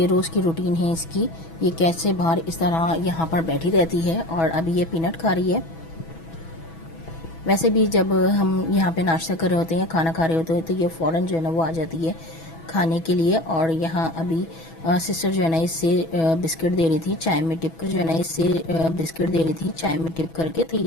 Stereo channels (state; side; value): late; right; 6.1 ms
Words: रोज़ की रूटीन है इसकी, ये कैसे बाहर इस तरह यहाँ पर बैठी रहती है और अभी ये पीनट खा रही है। वैसे भी जब हम यहाँ पे नाश्ता कर रहे होते हैं या खाना खा रहे होते हैं तो ये फ़ौरन जो है ना वो आ जाती है खाने के लिए। और यहाँ अभी सिस्टर जो है ना इससे बिस्किट दे रही थी चाय में डिप करके, तो